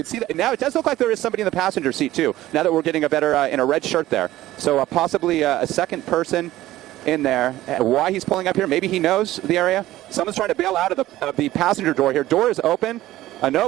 see that now. It does look like there is somebody in the passenger seat too. Now that we're getting a better in a red shirt there, so possibly a second person in there. Why he's pulling up here? Maybe he knows the area. Someone's trying to bail out of the passenger door here. Door is open.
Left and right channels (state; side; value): quieter; left; 15.3 dB